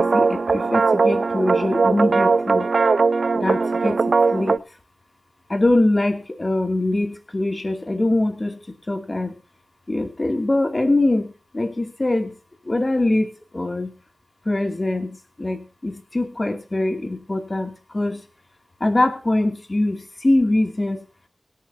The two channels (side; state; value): both; normal; correlation 0.95